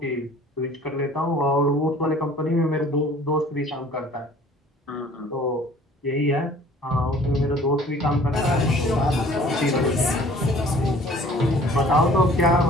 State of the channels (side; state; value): both; normal; correlation 0.51